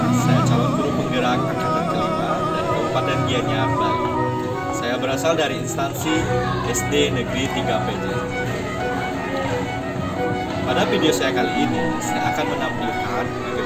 Saya calon guru penggerak angkatan kelima dari Kabupaten Gianyar, Bali. Saya berasal dari instansi SD Negeri 3 PJ. Pada video saya kali ini, saya akan menampilkan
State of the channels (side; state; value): both; identical; correlation 1.00